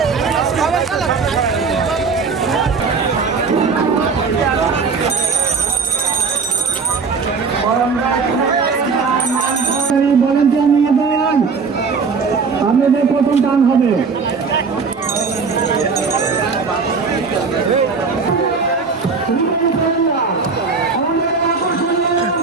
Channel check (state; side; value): quieter; left; 5.0 dB